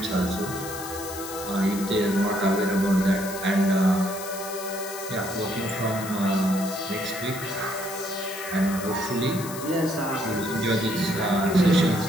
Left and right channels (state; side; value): noise; left; hiss, 11 dB below the sound